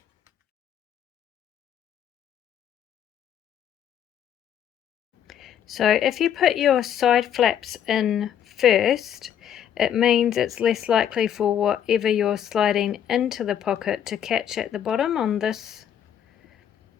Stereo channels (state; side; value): quieter; right; 9.5 dB